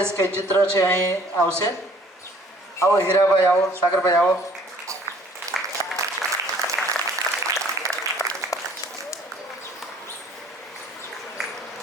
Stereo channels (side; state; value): both; normal; correlation 0.56